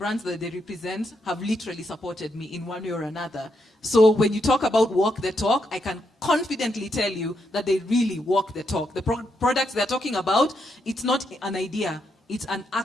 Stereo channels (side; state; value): both; normal; correlation 0.80